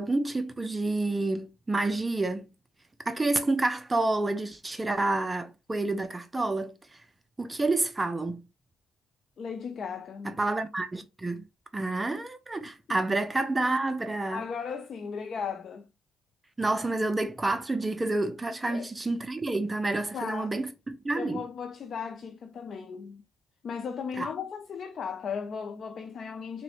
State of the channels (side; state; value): both; normal; correlation 0.91